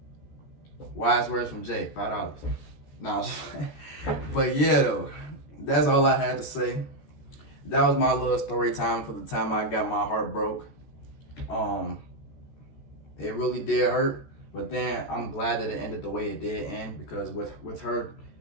Wise words from Jay, $5. No, but yeah though, that's all I had to say. That was my little story time for the time I got my heart broke. It really did hurt, but then I'm glad that it ended the way it did end, because with her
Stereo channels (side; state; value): right; late; 14 ms